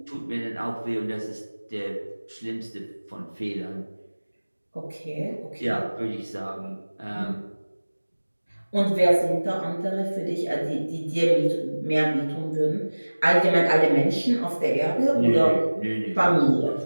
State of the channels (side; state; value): both; inverted; correlation -1.00